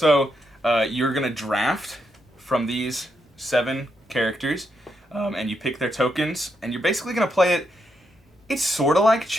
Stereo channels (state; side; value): normal; both; correlation 0.81